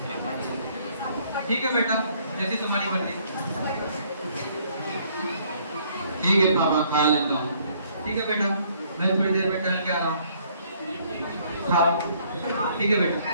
ठीक है बेटा, जैसी तुम्हारी मर्जी। ठीक है पापा, खा लेता हूँ। ठीक है बेटा, मैं थोड़ी देर में टहल के आ रहा हूँ। खाओ। ठीक है बेटा।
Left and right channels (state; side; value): inverted; both; correlation -0.64